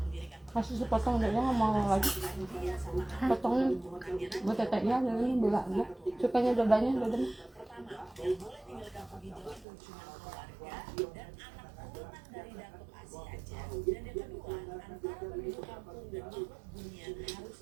Masih sepotong udah nggak mau lagi. Potongnya buat teteknya ini belah ya. Sukanya dadanya.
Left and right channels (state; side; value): drops out; left; at 9.7 s